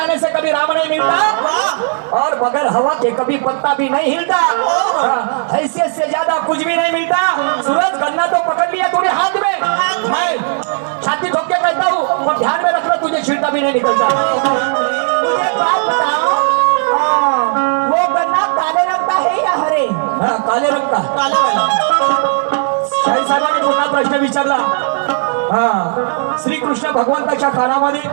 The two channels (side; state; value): left; silent; 60 dB below the other